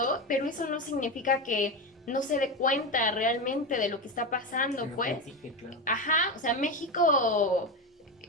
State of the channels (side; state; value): both; normal; correlation 0.16